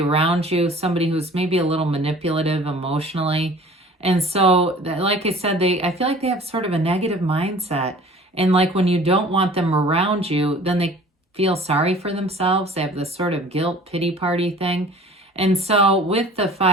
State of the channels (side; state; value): both; normal; correlation 0.47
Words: you, somebody who's maybe a little manipulative emotionally. And so, like I said, I feel like they have sort of a negative mindset. And like when you don't want them around you, then they feel sorry for themselves. They have this sort of guilt pity party thing. And so with the